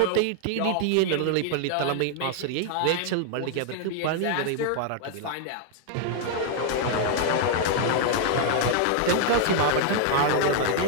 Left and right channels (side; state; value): both; different; correlation 0.00